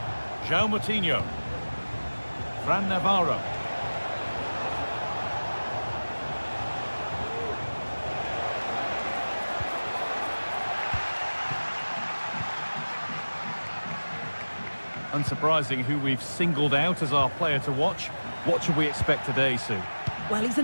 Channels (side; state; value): both; inverted; correlation -1.00